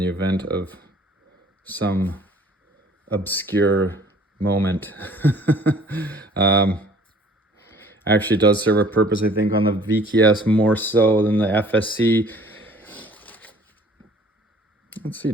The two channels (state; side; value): normal; both; correlation 0.53